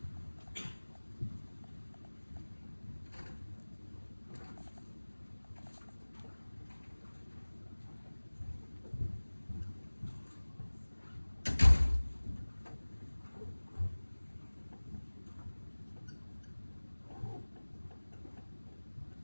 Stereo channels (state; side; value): inverted; both; correlation -1.00